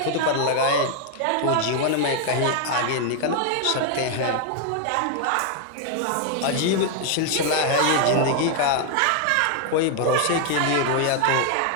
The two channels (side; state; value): both; different; correlation 0.00